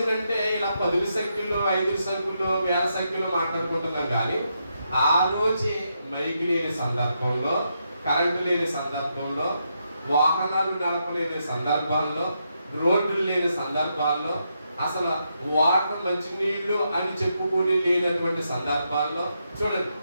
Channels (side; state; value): both; inverted; correlation -0.81